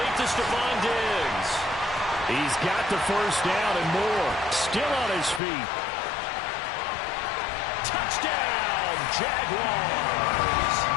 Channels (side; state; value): right; drops out; at 5.4 s